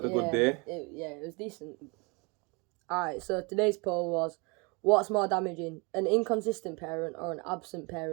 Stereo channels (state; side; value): quieter; left; 29.6 dB